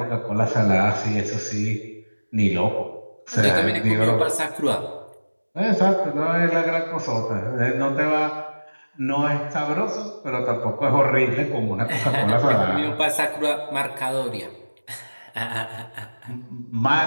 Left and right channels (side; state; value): both; inverted; correlation -1.00